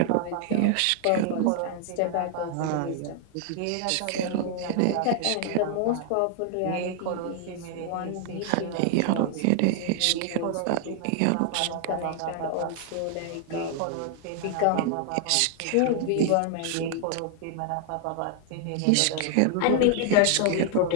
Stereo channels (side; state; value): both; different; correlation 0.00